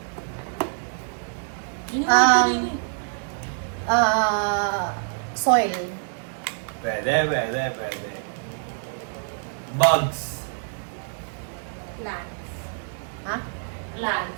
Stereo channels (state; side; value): silent; left; 59 dB below the other